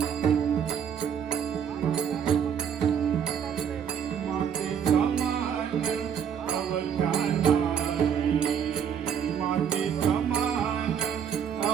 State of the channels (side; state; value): left; quieter; 8.0 dB